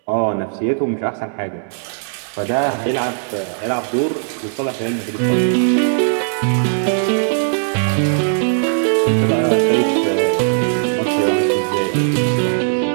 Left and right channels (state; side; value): silent; left; 67 dB below the other